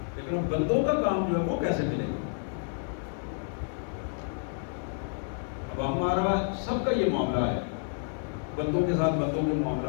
لیکن بندوں کا کام جو ہے وہ کیسے ملے گا؟ اب ہمارا سب کا یہ معاملہ ہے, بندوں کے ساتھ بندوں کے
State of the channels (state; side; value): silent; right; 58 dB below the other